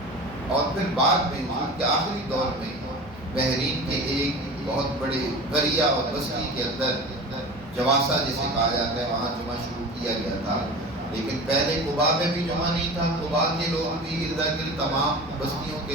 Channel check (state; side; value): normal; both; correlation 0.34